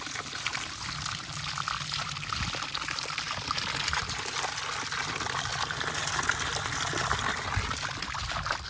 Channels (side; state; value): both; identical; correlation 1.00